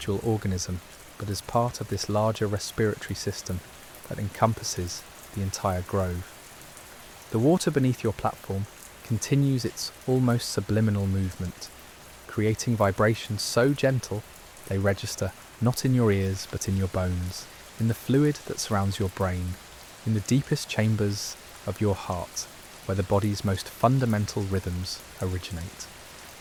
organism, but as part of this larger respiratory system that encompasses the entire grove. The water beneath your platform continues its almost subliminal movement, creating vibrations so gentle they register not in your ears but in your bones, in the fluid that surrounds your brain, in the deepest chambers of your heart, where the body's most fundamental rhythms originate.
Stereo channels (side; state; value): both; identical; correlation 1.00